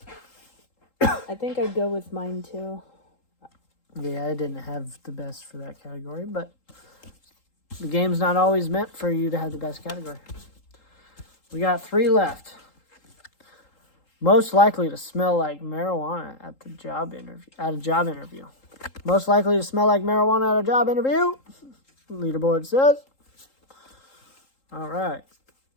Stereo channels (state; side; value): late; right; 3.8 ms